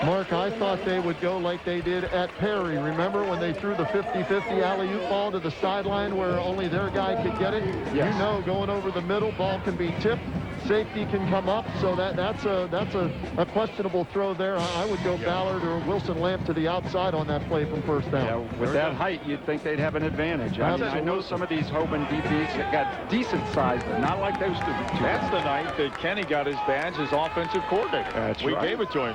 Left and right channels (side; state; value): both; identical; correlation 1.00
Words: Mark, I thought they would go like they did at Perry. Remember when they threw the 50-50 alley-oop ball to the sideline where only their guy could get it? Yes. You know, going over the middle, ball can be tipped. safety can come up, so that's a questionable throw there. I would go Ballard or Wilson Lamp to the outside on that play from first down. Yeah, with that height, you'd think they'd have an advantage. I know some of these Hoban DBs that got decent size, but not like those two. That's the night that Kenny got his badge as offensive coordinator. That's we right. gave it to